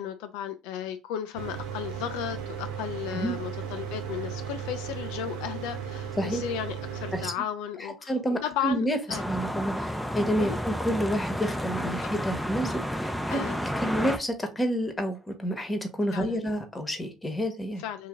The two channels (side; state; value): both; normal; correlation 0.68